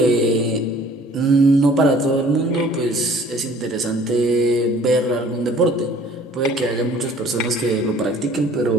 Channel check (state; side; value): normal; both; correlation 0.52